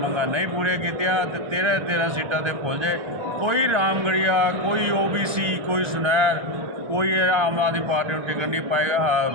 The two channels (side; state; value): left; late; 1.3 ms